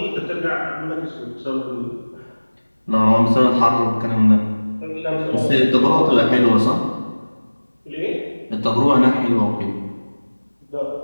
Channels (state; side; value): inverted; both; correlation -1.00